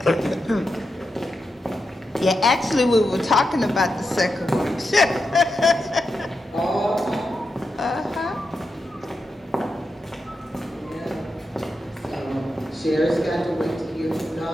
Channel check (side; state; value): both; normal; correlation 0.88